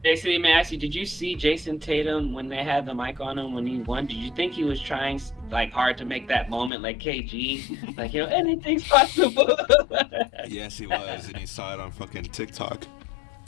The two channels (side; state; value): right; drops out; at 6.7 s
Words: Jason, let me ask you, did you see Jason Tatum when they had the mic on him when he won? Did you think he was trying like hard to make that moment like KG? Like, anything's possible. Yes, he was, and he saw it on fucking TikTok.